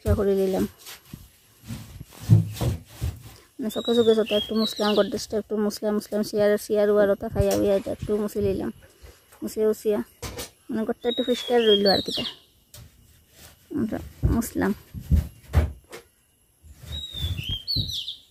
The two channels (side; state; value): both; identical; correlation 1.00